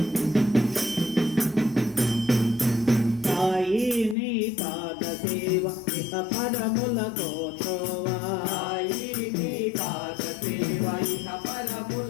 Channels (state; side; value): drops out; right; at 4.2 s